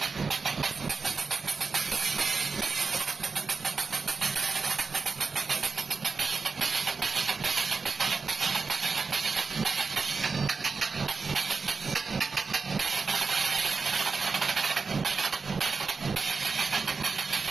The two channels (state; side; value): quieter; left; 4.7 dB